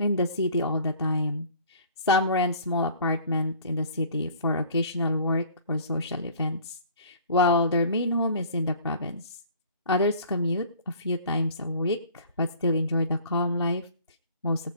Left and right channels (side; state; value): both; inverted; correlation -0.50